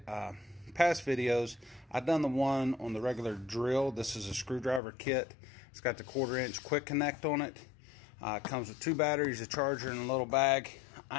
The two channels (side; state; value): right; drops out; at 4.8 s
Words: past videos, I've done the one on the regular drill. This is a screwdriver kit. It's got the 1/4-inch quick connect on it. It comes with 2 batteries, a charger, and a little bag.